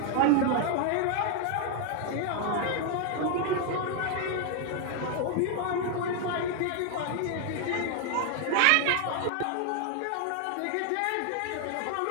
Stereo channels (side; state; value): both; different; correlation 0.00